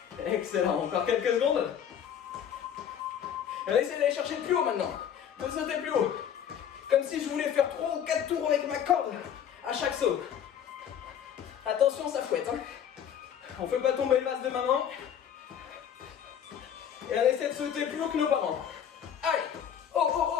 Excellent, encore quelques secondes. Allez, essayez d'aller chercher plus haut maintenant. De sauter plus haut. Comme si je voulais faire 3 ou 4 tours avec ma corde à chaque saut. Attention, ça fouette. Hein. On ne fait pas tomber le vase de maman. Et on essaie de sauter plus haut que nos parents. Allez. Oh, oh,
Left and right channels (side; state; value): right; quieter; 8.9 dB